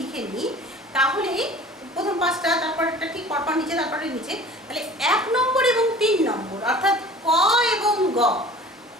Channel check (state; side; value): normal; both; correlation 0.44